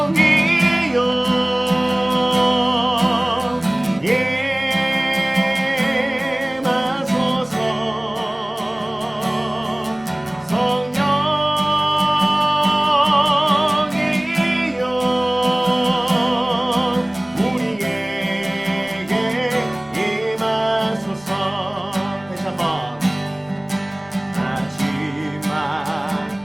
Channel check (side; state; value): left; noise; rumble, 28 dB below the sound